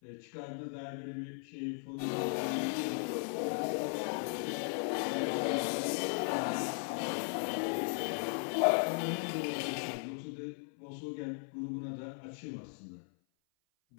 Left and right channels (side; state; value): right; silent; 53 dB below the other